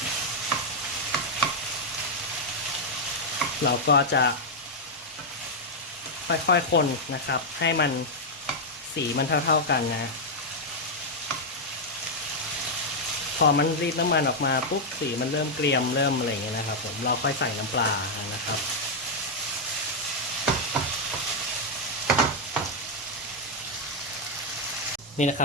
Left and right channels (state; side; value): normal; both; correlation -0.02